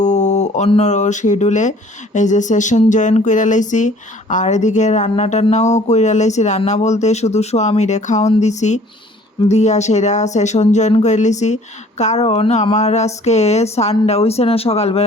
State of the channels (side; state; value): both; normal; correlation 0.54